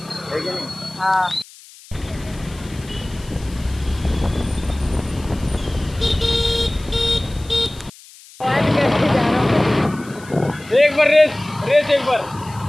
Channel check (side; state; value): left; noise; hiss, 21 dB below the sound